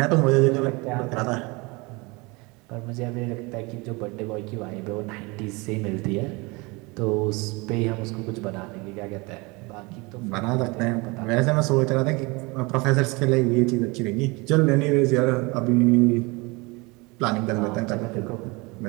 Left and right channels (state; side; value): quieter; left; 26.3 dB